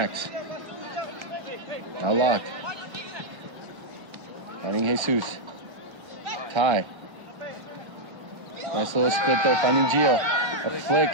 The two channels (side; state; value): left; late; 1.1 ms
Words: Now Locke. Finding Jesus. Ty. Nice little split there, finding Gio. A flick.